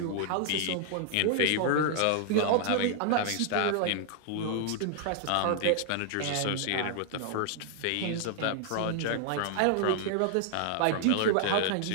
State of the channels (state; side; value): different; both; correlation 0.00